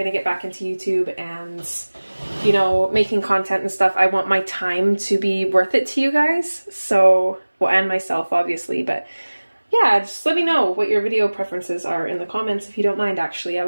to get back into YouTube and, you know, making content and stuff. I want my time to be worth it to you guys, so, well, and myself, obviously, but yeah, just let me know what your video preferences are in the comments if you don't mind, actually. I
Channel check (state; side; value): inverted; both; correlation -1.00